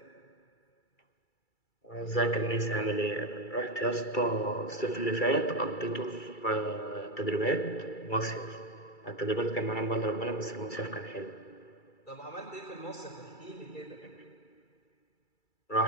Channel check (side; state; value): right; late; 2.3 ms